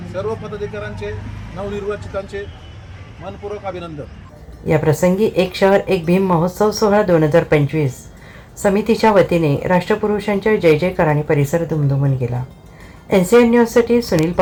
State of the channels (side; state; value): both; identical; correlation 1.00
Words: सर्व पदाधिकाऱ्यांचे नवनिर्वाचितांचे मनपूर्वक अभिनंदन. या प्रसंगी एक शहर एक भीम महोत्सव सोहळा 2025 समितीच्या वतीने राष्ट्रपुरुषांच्या जय जयकाराने परिसर दुमदुमून गेला. NCN न्यूजसाठी सुनील